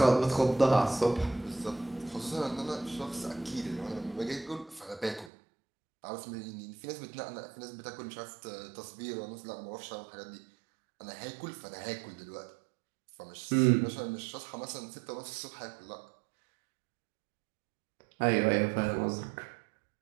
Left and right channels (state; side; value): drops out; left; at 5.3 s